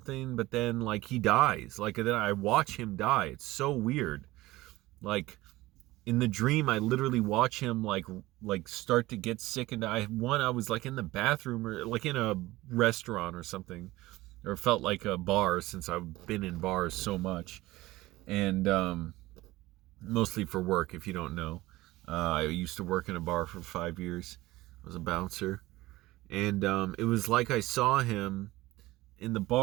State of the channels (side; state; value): left; quieter; 18.4 dB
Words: but then like he dies. Like then I watch him die. It's so weird. Like in the dream, I literally watch him like start to get sick and die. I was like in the bathroom or like in a restaurant or something, or felt like a bar since I've been in bars so much. And mostly for work, if you don't know. I used to work in a bar for 5 years. I was a bouncer. And it was like I saw him in the